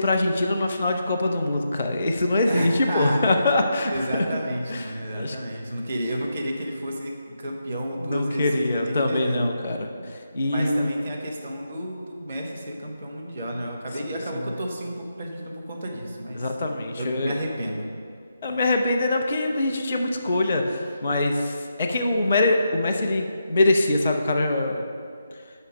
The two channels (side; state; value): both; inverted; correlation -0.83